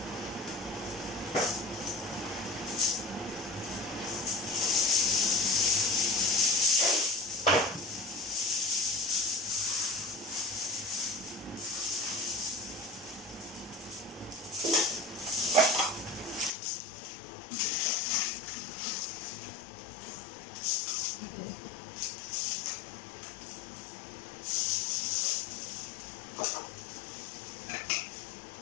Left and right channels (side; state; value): right; drops out; at 16.6 s